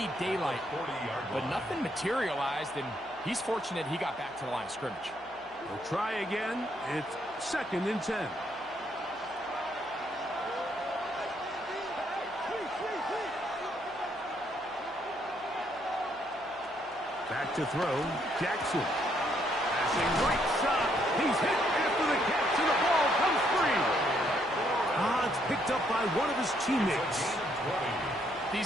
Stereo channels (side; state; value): right; noise; hum, 28 dB below the sound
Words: daylight. But nothing materialized, and he's fortunate he got back to the line of scrimmage. We'll try again. It's 2nd and 10. Back to throw, Jackson. Passing right side. He's hit after the catch, and the ball comes free. It's picked up by one of his teammates.